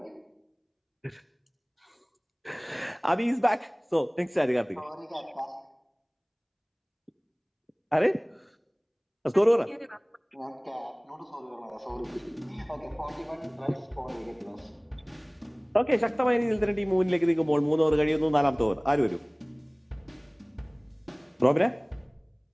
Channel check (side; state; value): both; identical; correlation 1.00